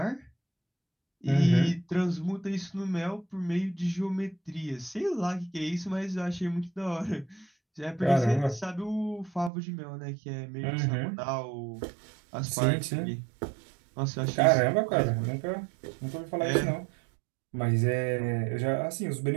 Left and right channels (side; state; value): left; drops out; at 9.5 s